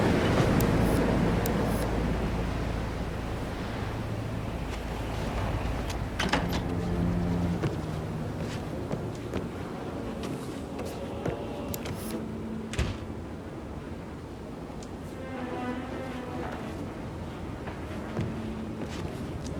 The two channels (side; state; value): both; identical; correlation 1.00